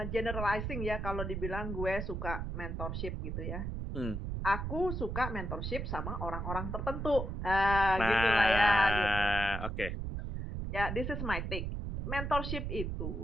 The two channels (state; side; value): noise; right; rumble, 3 dB below the sound